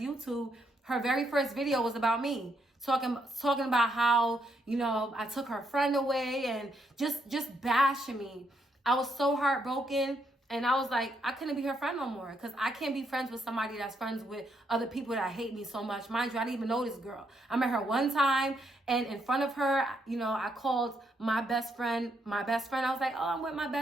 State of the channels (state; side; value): normal; both; correlation 0.76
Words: Her very first video was about me. Talking about how, you know, I took her friend away and just bashing me. I was so heartbroken, and I was like, I couldn't be her friend no more, because I can't be friends with somebody that's friends with other people that hate me so much. Mind you, I didn't even know this girl. I met her one time, and in front of her, you know, I called my best friend. I was like, oh, I'm with my